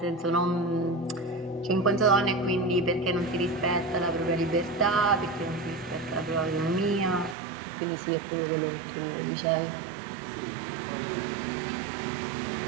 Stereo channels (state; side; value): drops out; left; at 7.4 s